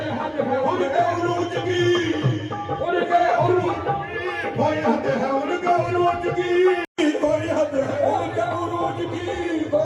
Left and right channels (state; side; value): identical; both; correlation 1.00